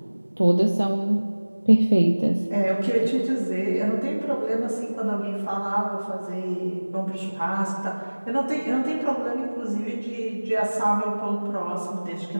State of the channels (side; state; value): both; inverted; correlation -1.00